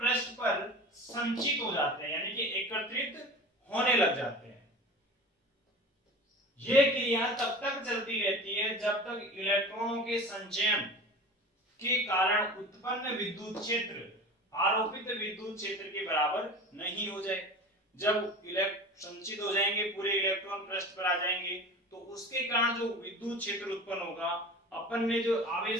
पर संचित हो जाते हैं, यानी कि एकत्रित होने लग जाते हैं। यह क्रिया तब तक चलती रहती है जब तक इलेक्ट्रॉनों के संचयन के कारण उत्पन्न विद्युत क्षेत्र आरोपित विद्युत क्षेत्र के बराबर नहीं हो जाए। जब संचित हो जाएंगे, पूरे इलेक्ट्रॉन पृष्ठ पर आ जाएंगे, तो उसके कारण जो विद्युत क्षेत्र उत्पन्न होगा, अपन ने जो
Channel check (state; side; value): normal; both; correlation 0.35